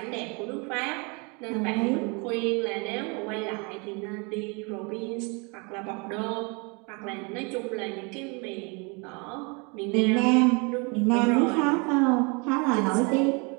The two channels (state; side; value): quieter; left; 31.4 dB